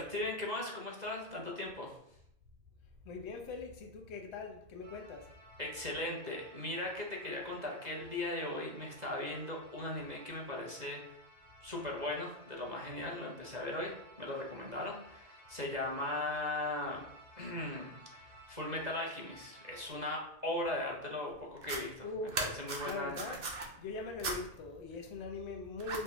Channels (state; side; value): late; left; 2.6 ms